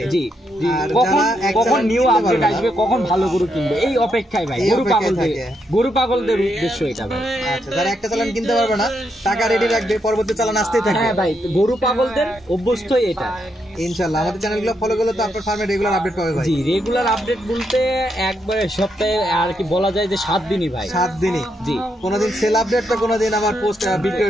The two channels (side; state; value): both; normal; correlation 0.80